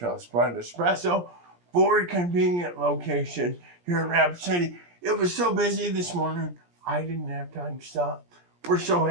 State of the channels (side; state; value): left; late; 17 ms